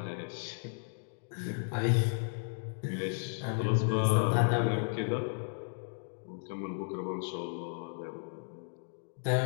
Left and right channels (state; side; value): silent; right; digital silence